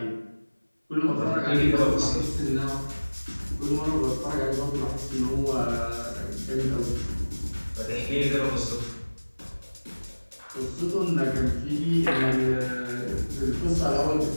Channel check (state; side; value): inverted; both; correlation -1.00